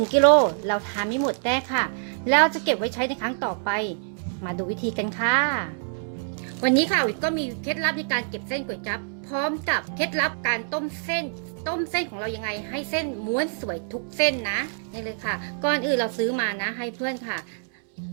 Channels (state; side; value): silent; left; 61 dB below the other